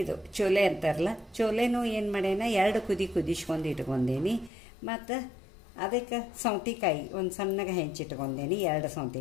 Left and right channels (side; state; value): right; drops out; at 4.5 s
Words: ಇದು ಚೋಲೆ ಅಂತಾರಲ್ಲ, ಚೋಲೆನೂ ಏನು ಮಾಡ್ಯಾನ 2 ಕುದಿಸ್ಕೊಂಡು ಇಟ್ಕೊಂಡೇನಿ. ಮತ್ತು ಅದಕ್ಕೆ ಸೌತೆಕಾಯಿ ಒಂದು ಸಣ್ಣಗೆ ಹೆಂಚಿಟ್ಕೊಂಡೇನಿ, 2